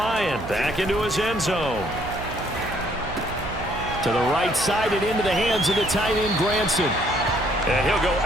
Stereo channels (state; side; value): noise; right; hum, 11 dB below the sound